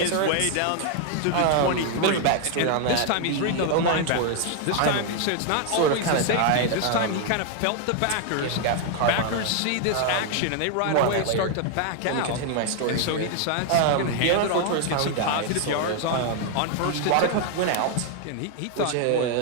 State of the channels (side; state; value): both; different; correlation 0.00